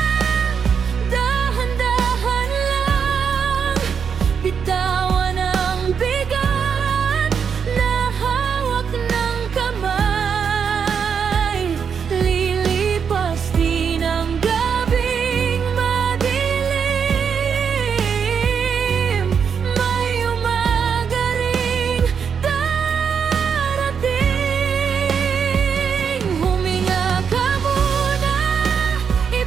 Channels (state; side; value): quieter; left; 6.8 dB